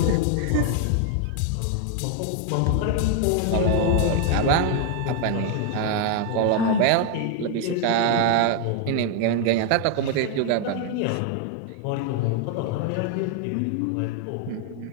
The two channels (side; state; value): both; different; correlation 0.00